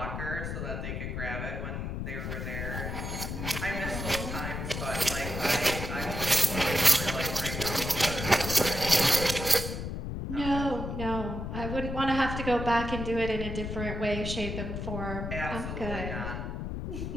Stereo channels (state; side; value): noise; left; rumble, 4 dB below the sound